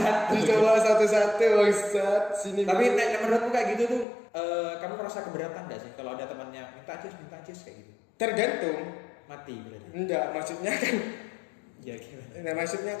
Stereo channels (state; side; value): drops out; right; at 4.0 s